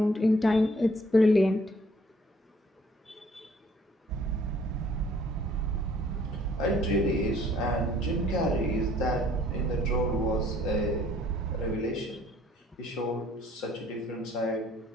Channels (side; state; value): both; normal; correlation 0.60